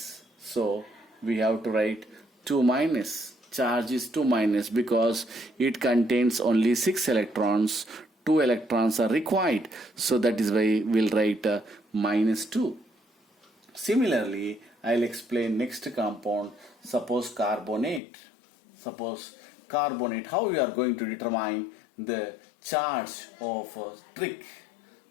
So we have to write 2 minus. Charge is 2 minus because it contains only 6 electrons. 2 electrons are required. So that is why we'll write minus 2. Similarly, I'll explain next compound. Suppose carbonate. Suppose carbonate, how we are going to determine the charge of a trick.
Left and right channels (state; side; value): drops out; right; at 18.0 s